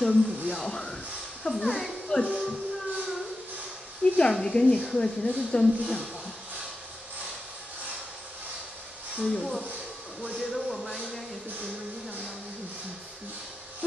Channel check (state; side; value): normal; both; correlation 0.90